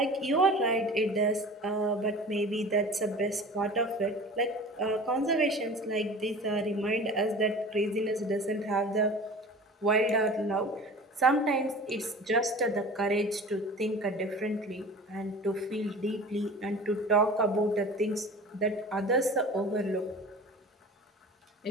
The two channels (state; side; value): normal; both; correlation 0.39